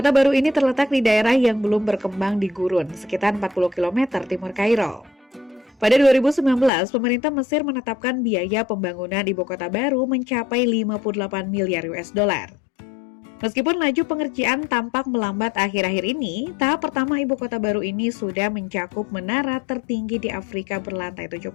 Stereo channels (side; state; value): right; drops out; at 6.7 s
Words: baru ini terletak di daerah yang belum berkembang di gurun, sekitar 40 km timur Kairo. Pada 2019, pemerintah Mesir menetapkan biaya pembangunan ibu kota baru mencapai 58 miliar US dollar. Meskipun laju pengerjaan tampak melambat akhir-akhir ini, tahap pertama ibu kota baru ini sudah mencakup menara tertinggi di Afrika berlantai 70.